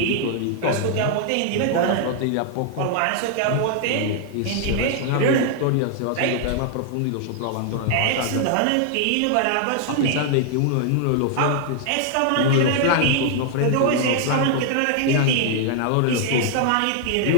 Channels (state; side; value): different; both; correlation 0.00